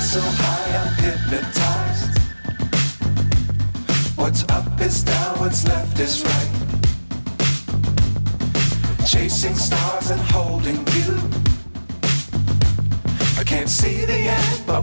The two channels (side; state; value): both; inverted; correlation -1.00